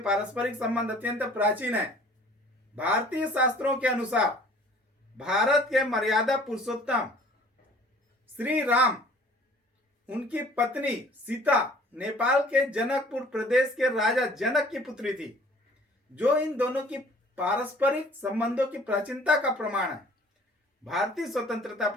पारस्परिक संबंध अत्यंत प्राचीन है। भारतीय शास्त्रों के अनुसार भारत के मर्यादा पुरुषोत्तम श्री राम, उनकी पत्नी सीता नेपाल के जनकपुर प्रदेश के राजा जनक की पुत्री थी, जो इन दोनों की पारस्परिक संबंधों की प्राचीनता का प्रमाण है। भारतीय स्वतंत्रता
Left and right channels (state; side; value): normal; both; correlation 0.52